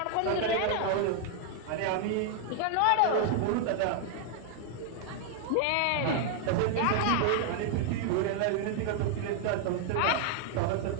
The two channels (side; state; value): both; different; correlation 0.00